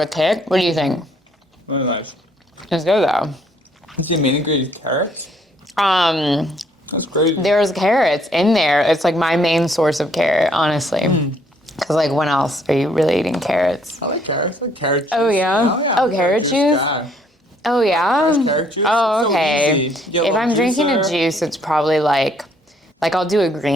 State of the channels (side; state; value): both; normal; correlation 0.66